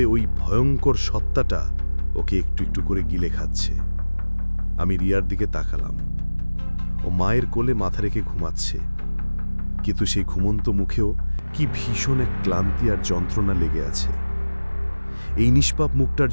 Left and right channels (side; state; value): both; inverted; correlation -1.00